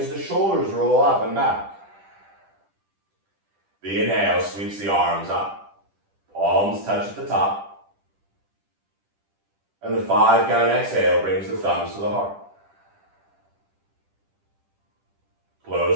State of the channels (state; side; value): late; left; 10 ms